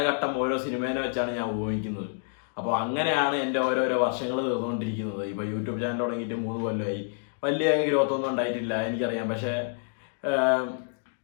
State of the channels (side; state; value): right; silent; 59 dB below the other